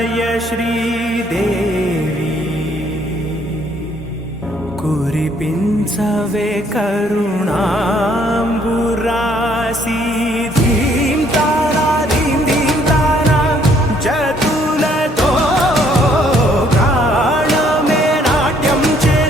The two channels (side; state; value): both; normal; correlation 0.65